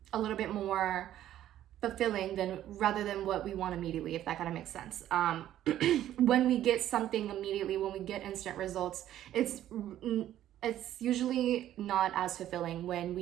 a little bit more fulfilling rather than what we want immediately, if that kind of makes sense. When we get something immediately, when we get instant results, it's it's usually not as fulfilling when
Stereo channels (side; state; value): left; quieter; 12.3 dB